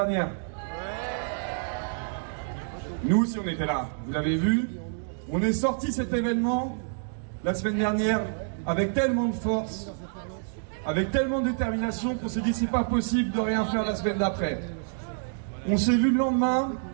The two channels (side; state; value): left; silent; digital silence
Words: Nous aussi on était là, vous l'avez vu. On est sorti cet événement la semaine dernière avec tellement de force, avec tellement de détermination qu'on s'est dit c'est pas possible de rien faire la semaine d'après. On s'est vu le lendemain